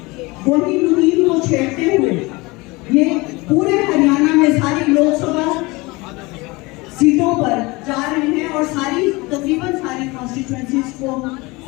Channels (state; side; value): quieter; right; 23.8 dB